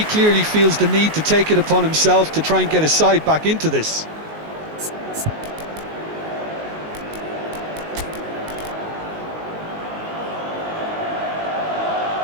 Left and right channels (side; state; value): left; late; 19 ms